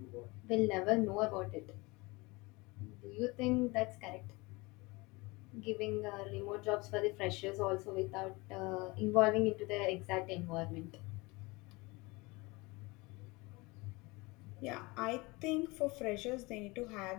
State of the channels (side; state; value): right; quieter; 24.4 dB